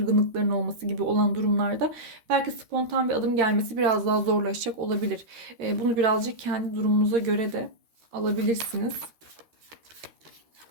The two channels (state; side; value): late; left; 13 ms